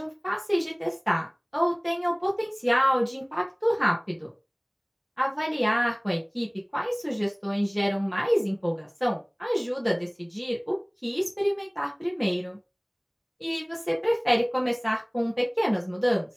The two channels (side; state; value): both; identical; correlation 1.00